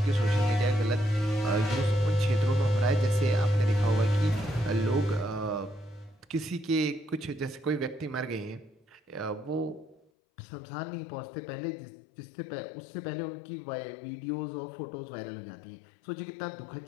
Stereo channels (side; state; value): right; drops out; at 10.1 s